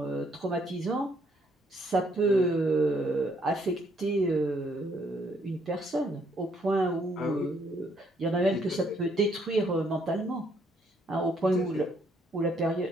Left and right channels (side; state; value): both; normal; correlation 0.69